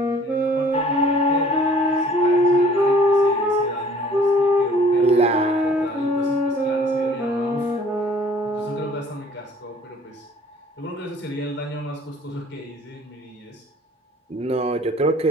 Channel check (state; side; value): normal; both; correlation 0.53